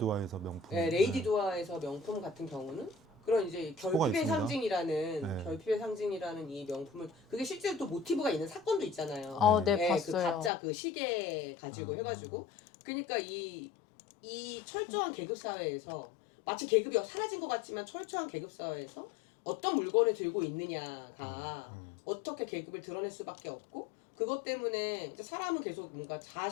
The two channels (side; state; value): right; drops out; at 10.5 s